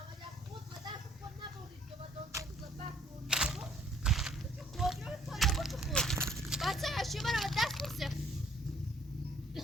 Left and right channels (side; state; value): both; normal; correlation 0.63